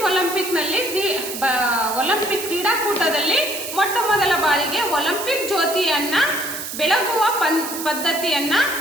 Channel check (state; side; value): noise; right; hiss, 7 dB below the sound